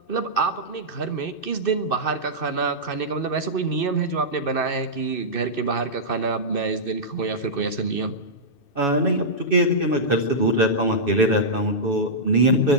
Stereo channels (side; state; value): right; late; 2.6 ms